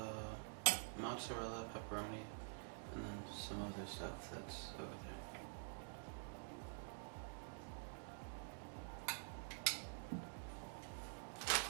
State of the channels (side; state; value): left; silent; digital silence